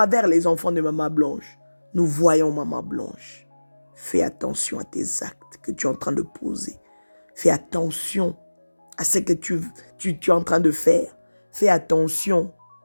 les enfants de Maman Blanche, nous voyons Maman Blanche. Fais attention à tes actes que tu es en train de poser. Fais attention à ce que tu es en train de faire. Fais attention.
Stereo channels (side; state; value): both; inverted; correlation -1.00